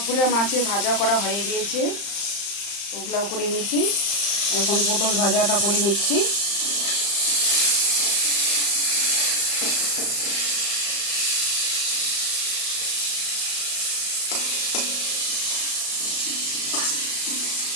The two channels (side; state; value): right; late; 35 ms